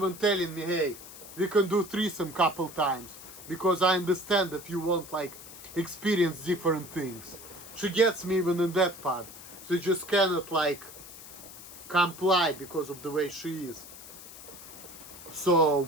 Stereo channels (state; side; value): noise; left; hiss, 15 dB below the sound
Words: telling me, hey, we can do threesome couple times. Because I understand that you want like experience different things. She gets me even in that part. So you just cannot like comply because of the way she is. So